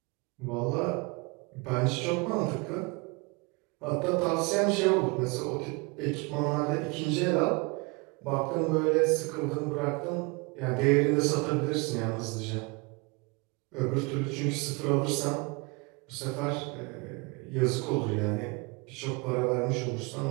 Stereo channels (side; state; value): left; quieter; 28.8 dB